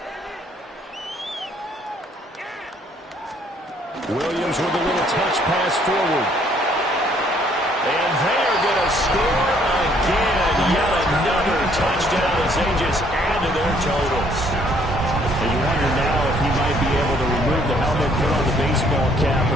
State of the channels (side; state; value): both; normal; correlation 0.64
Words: Williams with a little touch pass forward. And they are going to score again. Yet another touchdown as they just add to their totals. And you wonder now if he might be able to remove the helmet, put on the baseball cap,